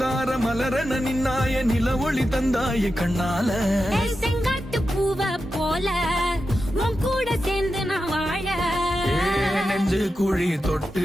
மலரன நின்னாய நில ஒளி தந்தாய கண்ணால. செங்காட்டு பூவ போல உன் கூட சேர்ந்து நான் வாழ. நெஞ்சு குழி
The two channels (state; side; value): normal; both; correlation 0.90